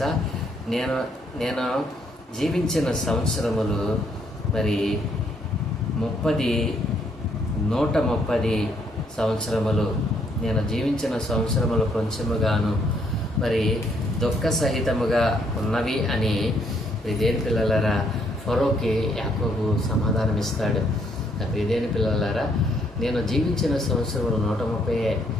నేను జీవించిన సంవత్సరములు మరి 130 సంవత్సరములు. నేను జీవించిన సంవత్సరములు కొంచెముగాను మరి దుఃఖ సహితముగా ఉన్నవి అని ప్రియమైన పిల్లలారా ఫరోకి యాకోబు సమాధానం ఇస్తాడు. నా ప్రియమైన పిల్లలారా, నేను జీవించిన సంవత్సరములు 130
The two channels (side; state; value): both; normal; correlation 0.70